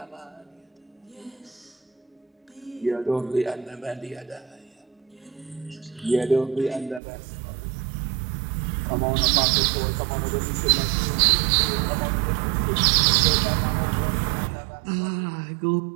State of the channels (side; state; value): left; drops out; at 7.0 s